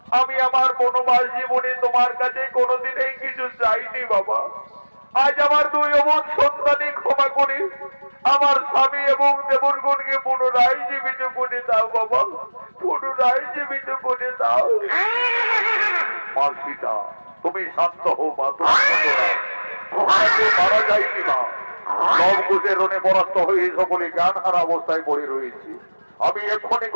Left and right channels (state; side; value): inverted; both; correlation -1.00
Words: আমি আমার বনবাস জীবনে তোমার কাছে কোনোদিনই কিছু চাইনি বাবা। আজ আমার দুই অমন সন্তানই ক্ষমা করে আমার স্বামী এবং দেবরগণকে পুনরায় জীবিত করে দাও বাবা, পুনরায় জীবিত করে দাও। মা সীতা, তুমি শান্ত হও মা, মারা যায়নি মা। লবকুশের রণে পরাস্ত হয়ে সকলে জ্ঞান হারা অবস্থায় পড়ে রয়েছে। আমি এক্ষুনি